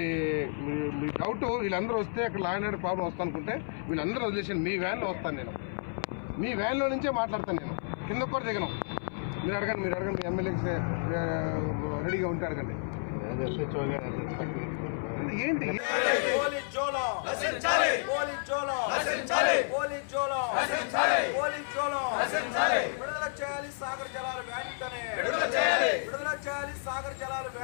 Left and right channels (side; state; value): right; silent; 57 dB below the other